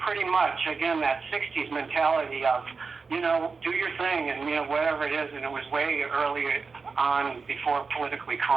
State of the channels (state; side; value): quieter; left; 4.7 dB